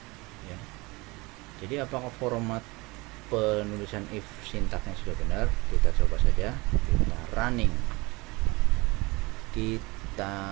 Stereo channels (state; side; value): quieter; left; 24.0 dB